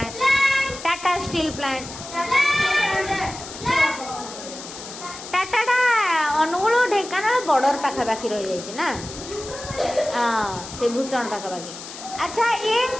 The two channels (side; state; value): left; noise; hiss, 12 dB below the sound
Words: Tata steel plant Tata Angul Dhenkanal border पाखापाखि रही जाइए ना से भूषण पाखापाखि अच्छा ये